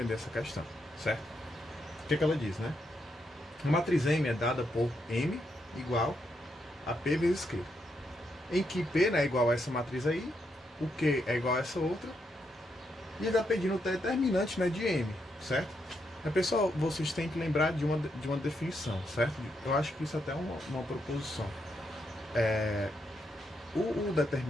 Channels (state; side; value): normal; both; correlation 0.80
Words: essa questão, certo? O que ela diz, né? A matriz M é dada por M igual a P vezes Q. Em que P, né, é igual a essa matriz aí, o Q é igual a essa outra, e ele está pedindo o determinante, né, de M, certo? Mas, pessoal, vocês têm que lembrar de uma definição, certo? Eu acho que isso até é uma proposição. O